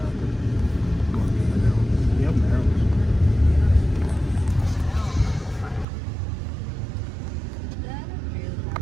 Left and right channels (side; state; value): left; drops out; at 5.9 s